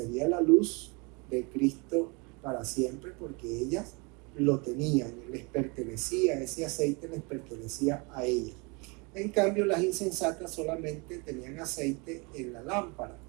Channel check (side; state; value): left; quieter; 29.9 dB